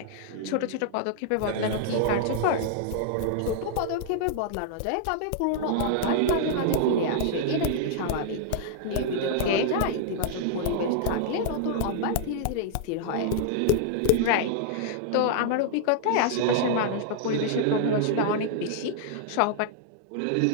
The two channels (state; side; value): different; both; correlation -0.01